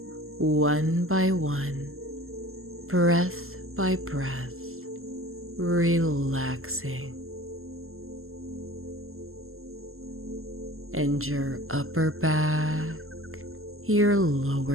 one by one, breath by breath, relaxing. And your upper back, your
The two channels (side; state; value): left; late; 0.62 ms